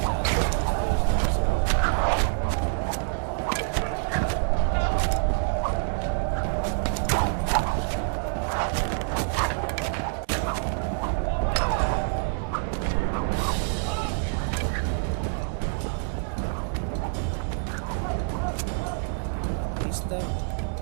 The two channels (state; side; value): silent; left; 61 dB below the other